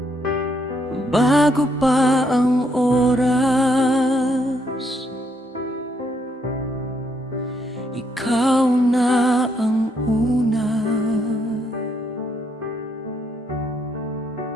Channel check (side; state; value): both; normal; correlation 0.74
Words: Bago pa ang oras, ikaw na ang una.